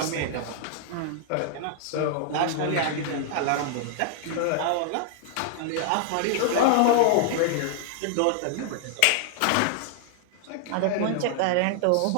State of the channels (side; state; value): both; different; correlation -0.01